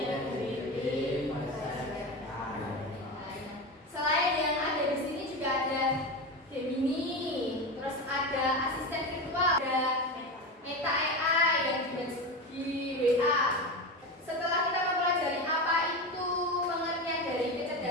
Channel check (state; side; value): normal; both; correlation 0.21